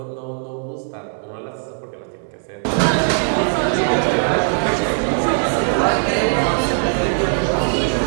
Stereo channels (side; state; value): left; silent; digital silence